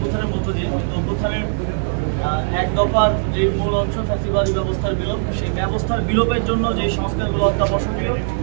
মধ্য দিয়ে, কিন্তু অভ্যুত্থানের এক দফার যে মূল অংশ ফ্যাসিবাদী ব্যবস্থার বিলোপ, সেই ব্যবস্থার বিলোপের জন্য যে সংস্কারগুলো অত্যাবশ্যকীয়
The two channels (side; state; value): left; silent; digital silence